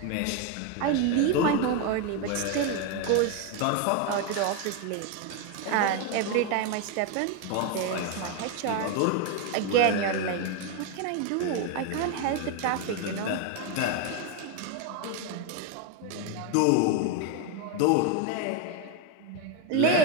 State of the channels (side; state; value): both; different; correlation 0.02